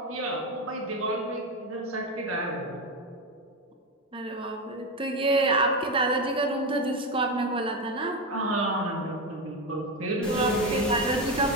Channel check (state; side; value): normal; both; correlation 0.13